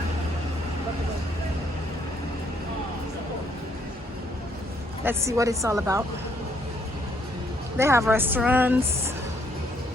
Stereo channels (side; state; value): both; normal; correlation 0.69